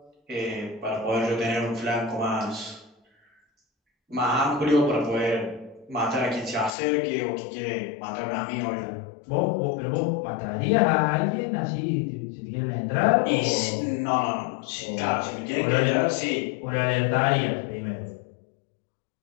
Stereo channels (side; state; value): right; drops out; at 6.8 s